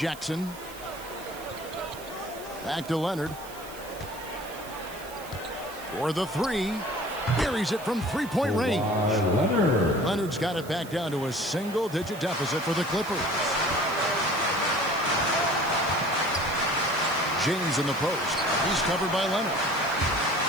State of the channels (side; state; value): right; noise; hiss, 17 dB below the sound